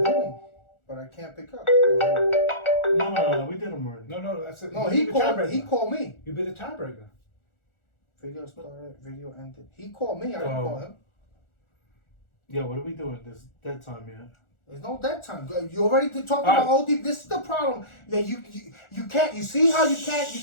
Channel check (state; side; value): late; right; 1.4 ms